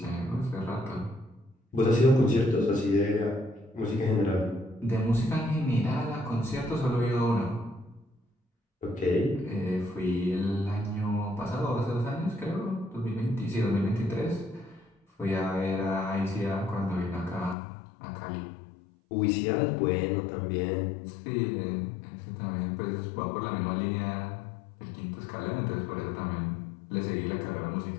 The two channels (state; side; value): drops out; right; at 17.6 s